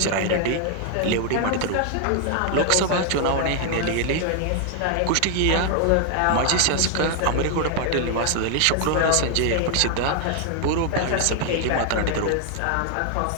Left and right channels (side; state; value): both; different; correlation 0.00